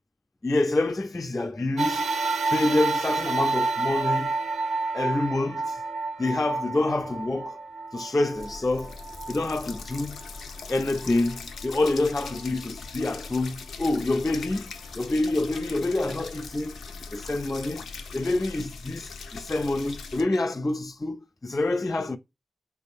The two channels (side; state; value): both; normal; correlation 0.91